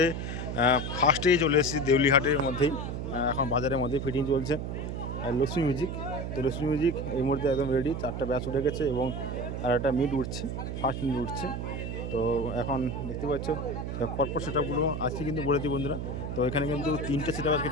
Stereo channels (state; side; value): noise; right; hum, 4 dB below the sound